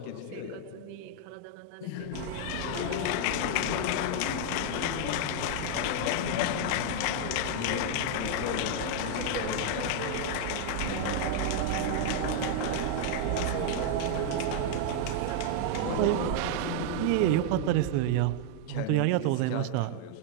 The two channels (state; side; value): different; both; correlation 0.00